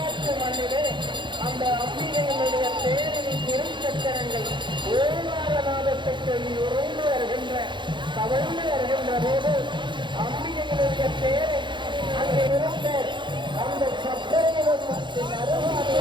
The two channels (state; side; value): late; left; 0.23 ms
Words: மண்ணிலே அந்த அம்பிகையினுடைய தேரின் திருச்சக்கரங்கள் ஓங்காரநாதத்தை சொல்லி உறைந்து வருகின்ற தவழ்ந்து வருகின்ற போது அம்பிகையினுடைய தேரை அங்கே இருந்த அந்த சக்கரத்தின்